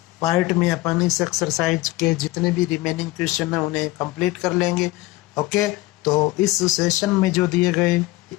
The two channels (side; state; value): right; quieter; 18.8 dB